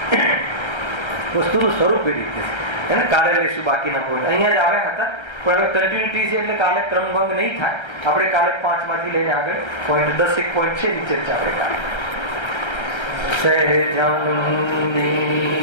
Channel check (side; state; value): right; late; 1.3 ms